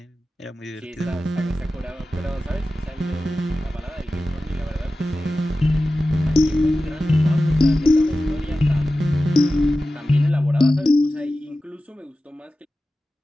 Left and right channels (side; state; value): both; normal; correlation 0.94